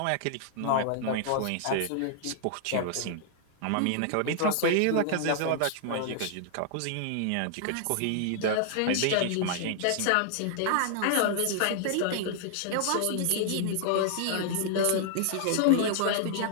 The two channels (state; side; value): different; both; correlation -0.01